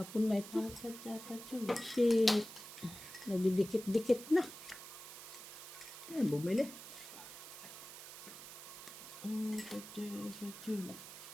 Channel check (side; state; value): right; noise; hiss, 13 dB below the sound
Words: na ito. Dapat. Kasi nagdidikit-dikit na. Ay, bumili.